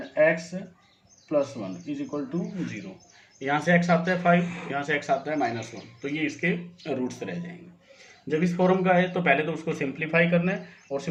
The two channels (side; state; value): both; identical; correlation 1.00